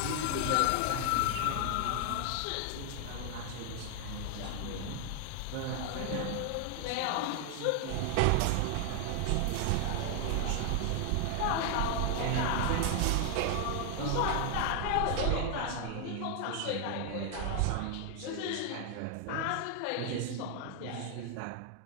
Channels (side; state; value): both; different; correlation 0.00